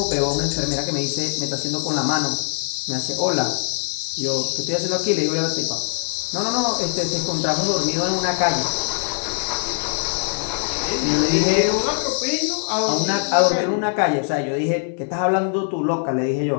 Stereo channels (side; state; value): right; silent; 58 dB below the other